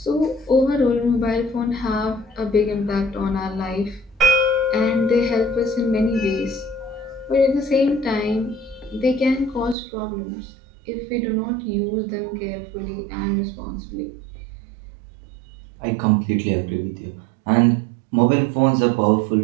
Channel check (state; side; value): drops out; left; at 9.8 s